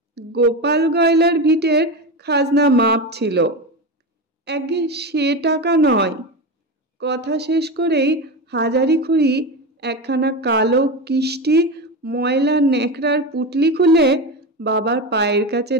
গোপাল গয়লার ভিটের খাজনা মাপ ছিল। আগে সে টাকা নয়। কথা শেষ করেই হাজারি খুঁড়ি একখানা কালো কিষ্টি ময়লা ন্যাকড়ার পুটলি খুলে বাবার পায়ের কাছে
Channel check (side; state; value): both; normal; correlation 0.20